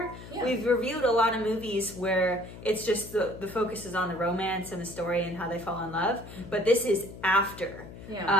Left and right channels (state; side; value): noise; left; hum, 14 dB below the sound